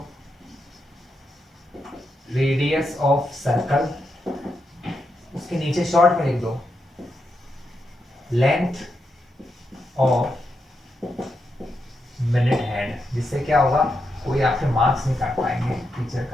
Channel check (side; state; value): both; normal; correlation 0.84